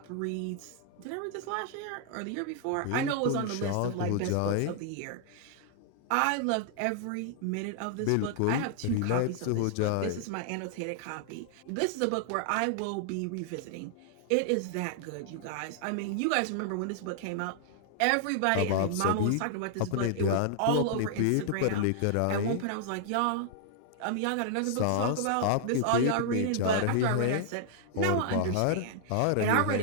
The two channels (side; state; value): both; different; correlation -0.01